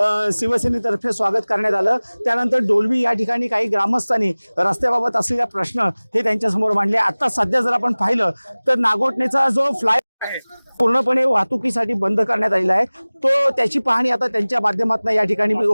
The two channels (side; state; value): both; inverted; correlation -1.00